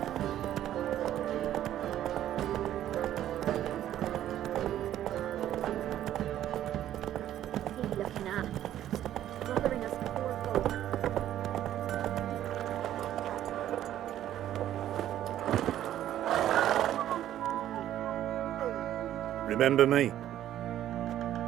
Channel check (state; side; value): quieter; left; 12.0 dB